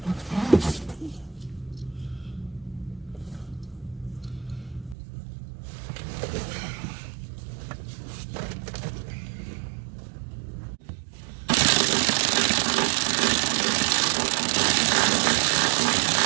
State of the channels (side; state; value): left; drops out; at 5.0 s